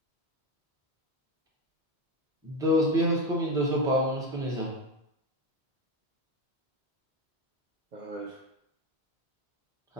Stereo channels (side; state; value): both; normal; correlation 0.16